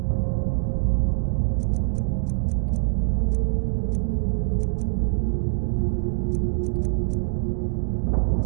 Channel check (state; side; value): silent; left; digital silence